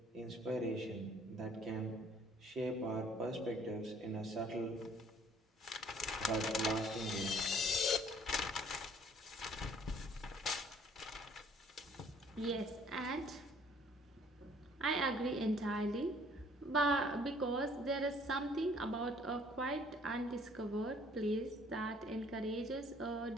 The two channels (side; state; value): both; normal; correlation 0.58